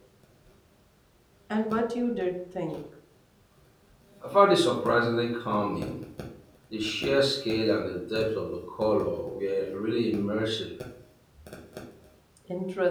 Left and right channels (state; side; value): identical; both; correlation 1.00